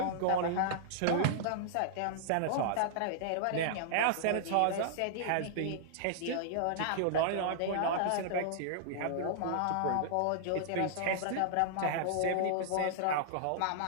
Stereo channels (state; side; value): different; both; correlation -0.01